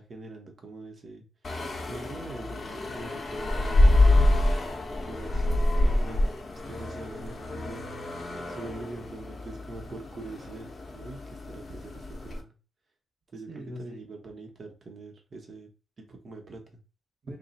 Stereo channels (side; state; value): both; normal; correlation 0.93